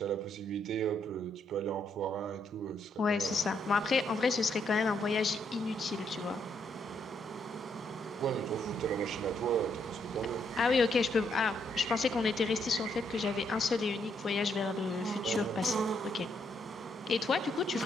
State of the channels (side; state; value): both; normal; correlation 0.74